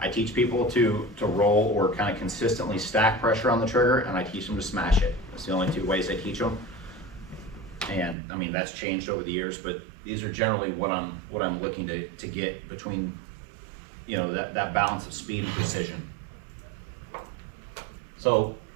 I teach people to roll or kind of consistently stack pressure on the trigger, and I teach them to smash it. That's the only two ways I teach them. And I mean, that's changed over the years, but these are generally what I'm looking to get between, you know, that balance of speed and precision. So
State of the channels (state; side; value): drops out; left; at 8.2 s